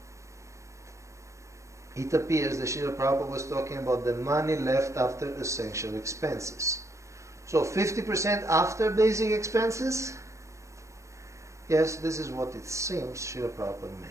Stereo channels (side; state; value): left; late; 0.15 ms